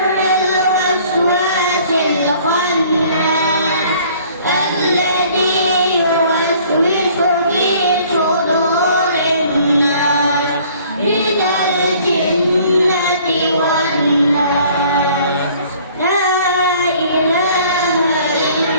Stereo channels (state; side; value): inverted; both; correlation -0.55